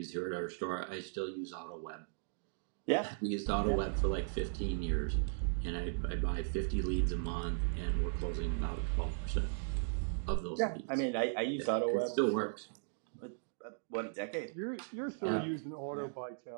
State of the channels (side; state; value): left; silent; digital silence